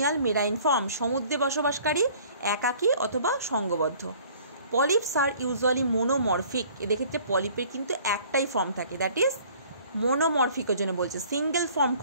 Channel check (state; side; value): inverted; both; correlation -0.53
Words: মেরাইন ফর্ম, সমুদ্রে বসবাসকারী, একাকী অথবা সংঘবদ্ধ। পলিপস আর ইউজুয়ালি মোনোমরফিক, এদের ক্ষেত্রে পলিপের কিন্তু একটাই ফর্ম থাকে, দ্যাট ইজ মোনোমরফিকের জন্য বলছে, single form